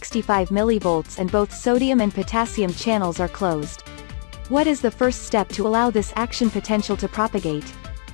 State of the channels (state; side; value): silent; right; digital silence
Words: mV and both sodium and potassium channels are closed. What is the first step to allow this action potential to propagate?